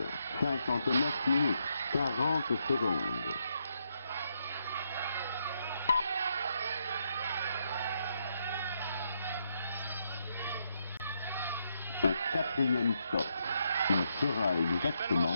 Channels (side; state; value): both; inverted; correlation -0.78